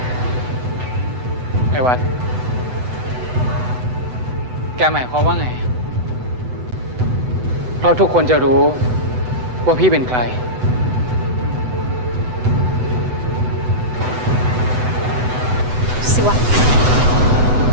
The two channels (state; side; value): late; left; 8.0 ms